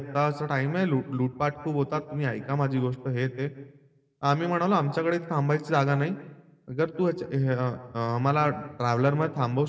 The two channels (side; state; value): both; identical; correlation 1.00